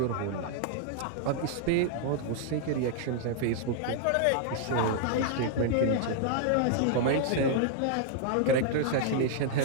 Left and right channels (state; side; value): different; both; correlation 0.00